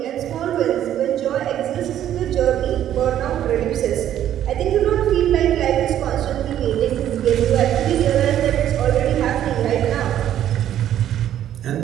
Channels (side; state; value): left; quieter; 11.2 dB